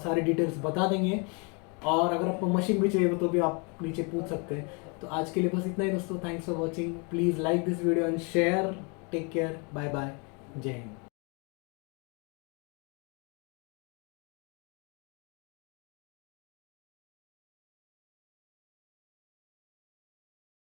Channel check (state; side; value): quieter; right; 33.4 dB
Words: डिटेल्स बता देंगे, और अगर आपको मशीन भी चाहिए तो भी आप नीचे पूछ सकते हैं। तो आज के लिए बस इतना ही दोस्तों। Thanks for watching. Please like this video and share. Take care. Bye bye. जय हिंद।